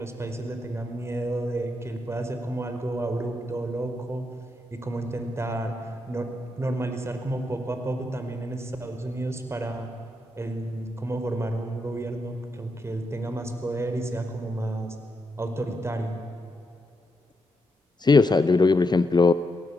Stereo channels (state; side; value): normal; both; correlation 0.82